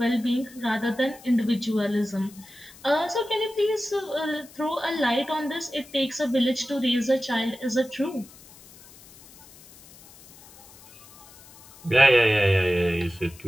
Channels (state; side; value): noise; left; hiss, 22 dB below the sound